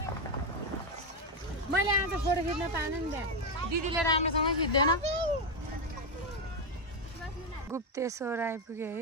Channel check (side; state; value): both; normal; correlation 0.05